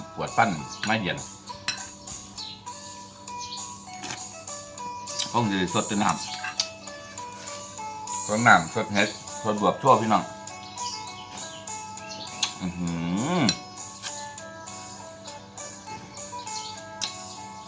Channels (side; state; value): both; identical; correlation 1.00